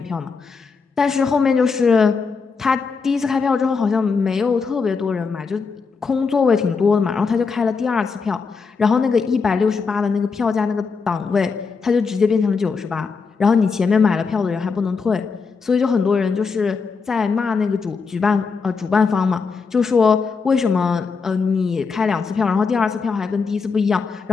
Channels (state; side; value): quieter; right; 5.0 dB